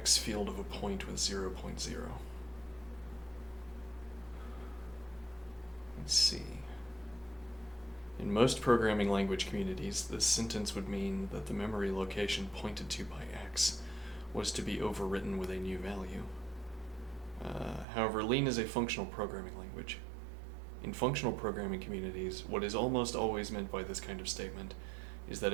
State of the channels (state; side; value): drops out; left; at 17.9 s